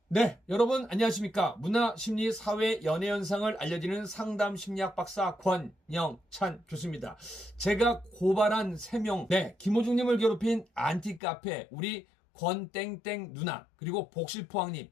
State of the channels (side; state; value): right; drops out; at 11.2 s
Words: 네, 여러분 안녕하십니까. 문화, 심리, 사회, 연애 현상을 알려드리는 상담 심리학 박사 권영찬 교수입니다. 제가 고발한 3명, 김호중님을 괴롭힌 안티카페, 우리 권땡땡 누나, 그리고 복실포항님,